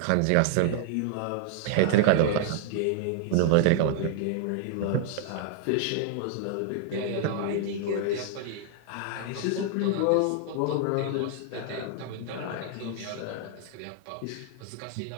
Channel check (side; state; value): both; different; correlation 0.00